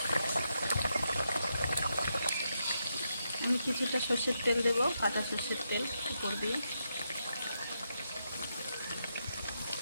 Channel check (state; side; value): inverted; both; correlation -0.83